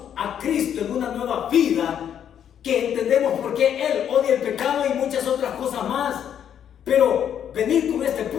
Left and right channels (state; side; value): quieter; right; 9.2 dB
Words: a Cristo en una nueva vida, que entendemos por qué Él odia el pecado y muchas otras cosas más. Pero venir con este